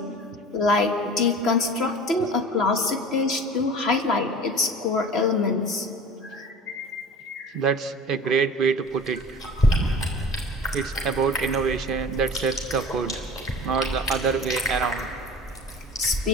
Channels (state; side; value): normal; both; correlation 0.39